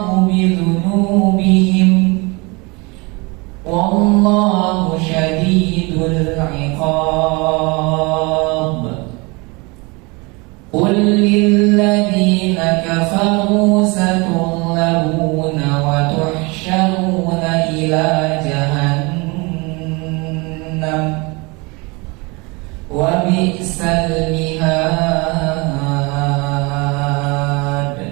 bidhunubihim wallahu syadidul iqab. Qul lilladzina kafaru satughlabuna wa tuhsyaruna ila jahannam wa bi'sal mihad.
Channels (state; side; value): quieter; left; 27.1 dB